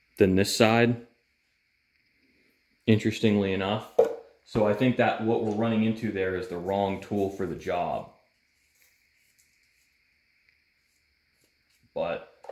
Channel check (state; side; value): identical; both; correlation 1.00